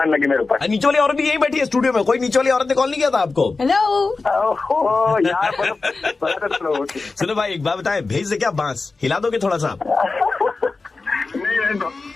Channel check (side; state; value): right; quieter; 3.9 dB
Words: लगी मेरे ऊपर। नीचे वाली औरत भी यही बैठी है स्टूडियो में। कोई नीचे वाली औरत ने कॉल नहीं किया था आपको? हेलो यार सुनो भाई, एक बात बताए, भेज दे क्या बांस? हिला दोगे थोड़ा सा?